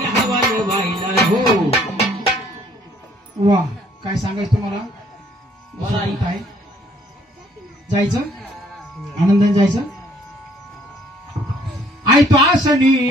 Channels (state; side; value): normal; both; correlation 0.62